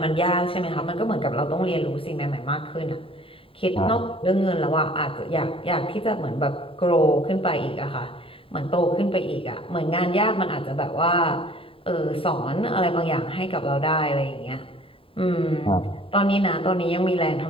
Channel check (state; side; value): late; right; 0.27 ms